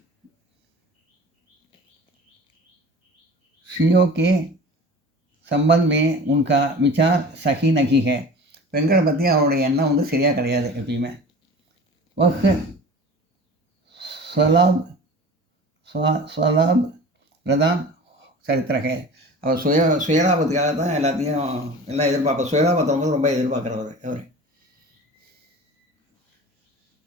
ஸ்ரீயோ के संबंध में उनका विचार सही नहीं है. பெண்களை பற்றி அவருடைய எண்ணம் வந்து சரியாக கிடையாது எப்பயுமே. वह स्वलाभ प्रधान சரித்திர है. அவர் சுயலாபத்துக்காக தான் எல்லாம் எதிர்பார்ப்பார். சுயலாபத்தை வந்து ரொம்ப எதிர்பார்க்குறவர் அவர்.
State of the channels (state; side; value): normal; both; correlation 0.39